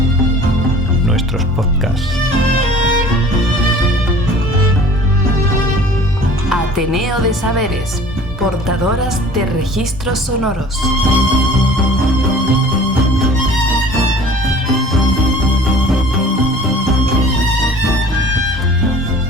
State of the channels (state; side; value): normal; both; correlation 0.47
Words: Nuestros podcasts. Ateneo de Saberes, portadoras de registros sonoros.